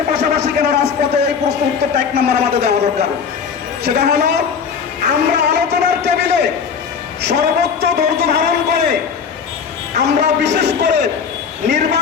পাশাপাশি কেন রাজপথে, এই প্রশ্ন উত্তরটা 1 নম্বর আমাদের দেওয়া দরকার। সেটা হলো, আমরা আলোচনার টেবিলে সর্বোচ্চ ধৈর্য ধারণ করে আমরা বিশেষ করে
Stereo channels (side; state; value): right; quieter; 6.5 dB